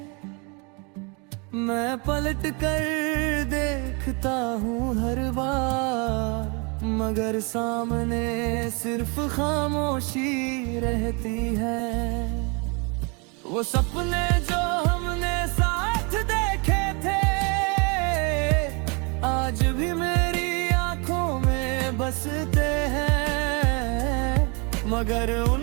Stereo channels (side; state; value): left; quieter; 32.2 dB